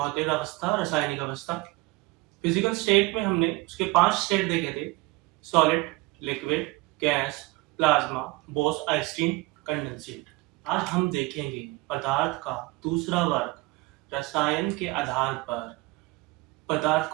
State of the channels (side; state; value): left; quieter; 22.2 dB